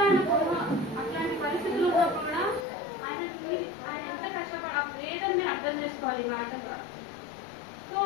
అట్లాంటి పరిస్థితులు ఉన్నప్పుడు కూడా ఆయన ఎంత కష్టపడ లేదని మీరు అర్థం చేసుకోవాలి ఈ మాట ద్వారా. సో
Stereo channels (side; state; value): right; drops out; at 2.7 s